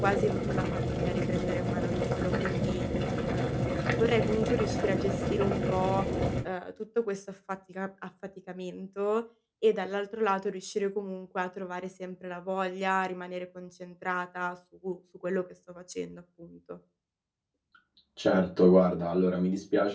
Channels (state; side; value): identical; both; correlation 1.00